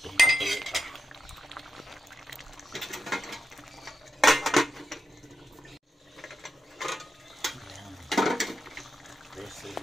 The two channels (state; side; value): normal; both; correlation 0.87